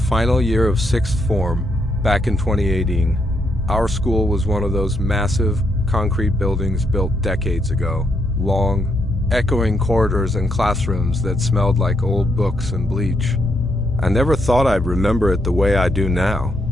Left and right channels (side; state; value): both; normal; correlation 0.77